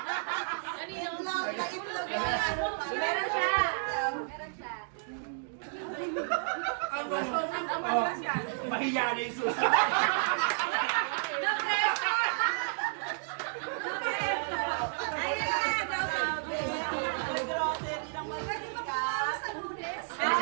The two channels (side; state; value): left; silent; digital silence